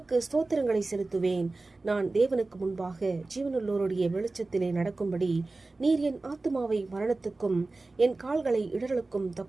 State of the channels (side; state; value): left; quieter; 3.3 dB